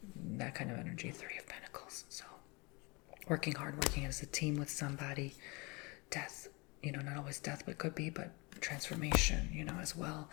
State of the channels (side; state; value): right; quieter; 27.4 dB